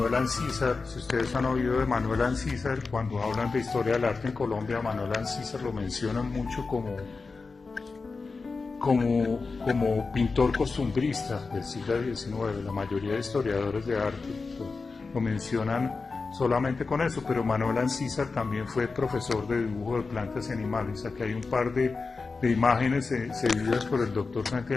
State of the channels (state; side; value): quieter; right; 4.2 dB